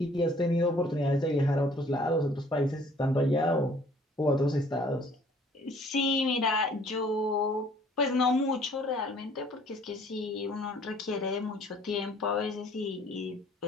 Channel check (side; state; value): both; normal; correlation 0.57